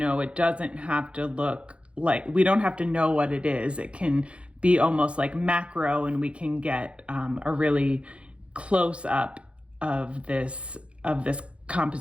it doesn't have to look like, we don't have to know what it is. It can be almost like macro, and we can get a really close up of this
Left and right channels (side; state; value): left; late; 0.060 ms